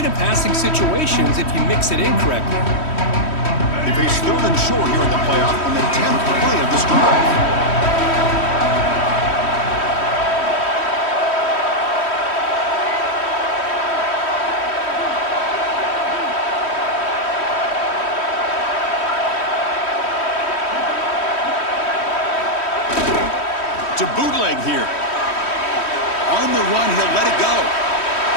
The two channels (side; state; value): right; late; 3.1 ms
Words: in passing situations, if you mix it in correctly. They face 3rd and short here in the playoff on the 10th play of this drive. To bootleg here. On the run, he'll let it go.